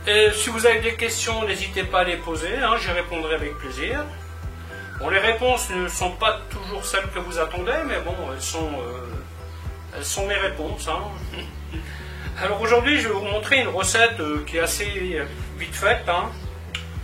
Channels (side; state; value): both; identical; correlation 1.00